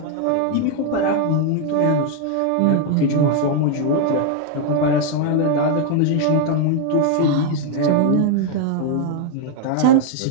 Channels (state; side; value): different; both; correlation 0.00